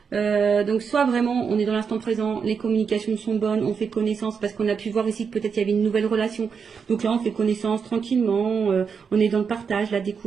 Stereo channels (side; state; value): left; quieter; 6.1 dB